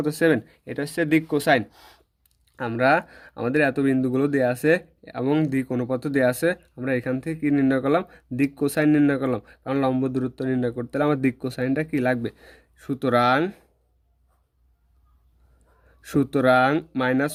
এটা হচ্ছে দিক কোসাইন। আমরা আমাদের এত বিন্দুগুলো দেওয়া আছে এবং দিক অনুপাত দেওয়া আছে, আমরা এখান থেকে কি নির্ণয় করলাম? দিক কোসাইন নির্ণয় করলাম। কারণ লম্ব দূরত্ব নির্ণয় করতে হলে আমার দিক কোসাইনটা কি লাগবে। সুতরাং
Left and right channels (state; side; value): identical; both; correlation 1.00